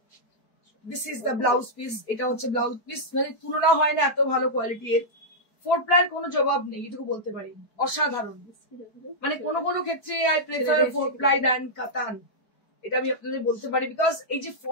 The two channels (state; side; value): late; right; 4.6 ms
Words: This is the blouse piece, এটা হচ্ছে blouse piece, মানে তুলনা হয় না এত ভালো কোয়ালিটি এর। 4-ply কোনো জবাব নেই, এটুকু বলতে পারি, অসাধারণ। মানে কোনো কোনো ক্ষেত্রে আই প্রেফার 4-ply দ্যান কাতান, এটা আমি আপনাদের বলতে পারি। বিকজ এই যে